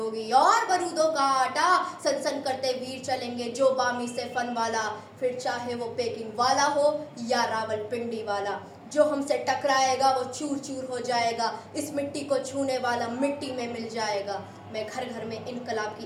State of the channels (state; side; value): identical; both; correlation 1.00